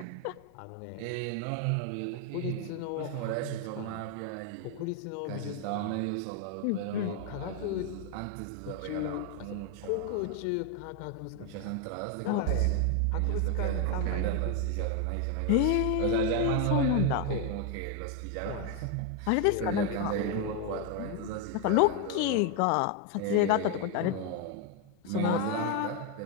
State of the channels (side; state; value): both; different; correlation 0.01